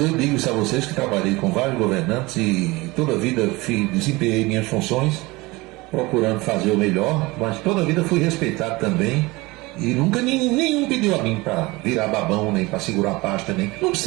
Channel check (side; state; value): left; quieter; 22.4 dB